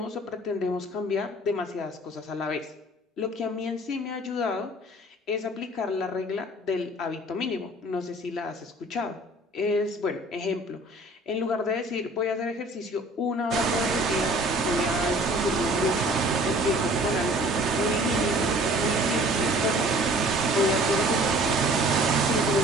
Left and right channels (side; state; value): both; normal; correlation 0.51